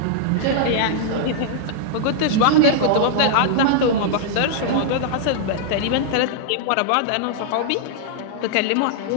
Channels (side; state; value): both; different; correlation -0.01